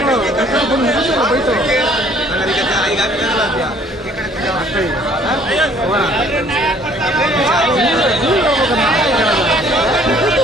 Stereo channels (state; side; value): normal; both; correlation 0.58